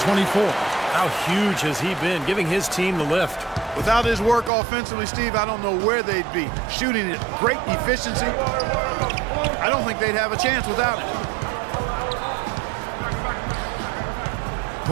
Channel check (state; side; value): drops out; left; at 4.5 s